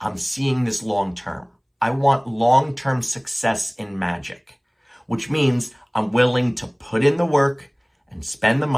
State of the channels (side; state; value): both; identical; correlation 1.00